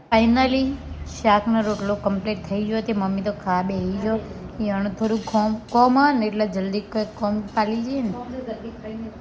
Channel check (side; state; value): both; identical; correlation 1.00